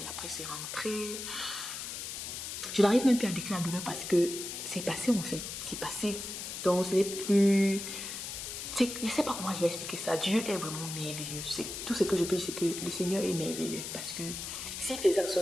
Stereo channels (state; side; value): noise; left; hiss, 7 dB below the sound